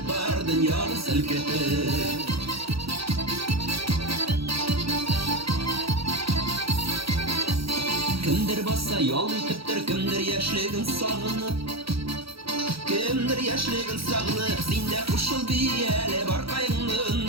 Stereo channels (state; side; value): late; left; 0.76 ms